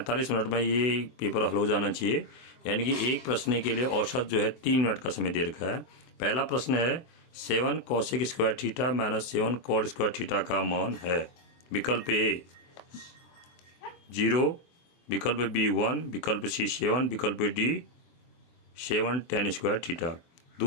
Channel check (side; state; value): right; late; 24 ms